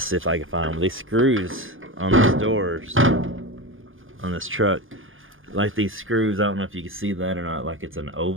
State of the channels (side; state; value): left; late; 0.58 ms